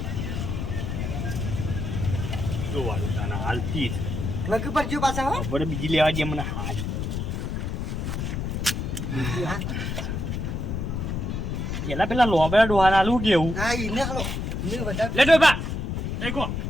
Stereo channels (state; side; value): noise; left; rumble, 3 dB below the sound